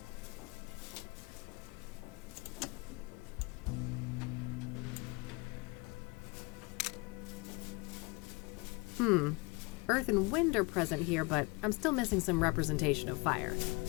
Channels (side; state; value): right; quieter; 27.4 dB